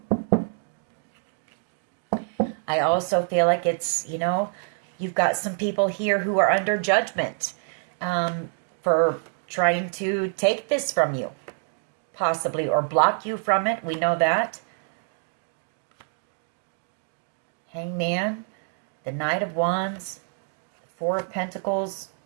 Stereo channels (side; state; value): left; silent; 57 dB below the other